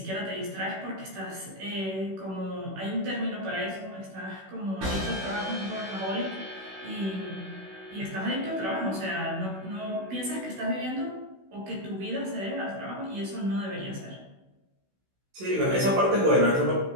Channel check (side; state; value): left; late; 16 ms